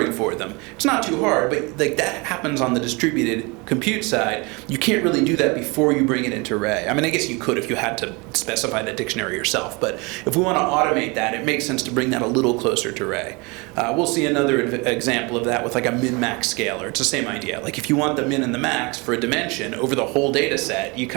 for them. It's not too hard, but like that happens on the distributed compute side. You can't really do that before you bring it into Ray. I mean, I guess you could if you had to specify the dictionary yourself, but if we want to automate that, it makes sense to bring that a little closer to Ray. We'll see another example of that with like a min-max scaler. It's the same idea. Like if you want the min and the max for a dimension over the whole data set, you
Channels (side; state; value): left; quieter; 27.8 dB